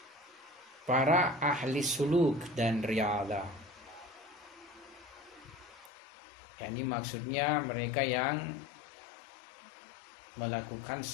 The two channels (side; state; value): right; drops out; at 5.9 s